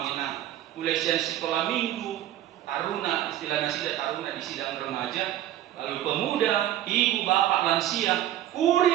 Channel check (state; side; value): quieter; left; 12.7 dB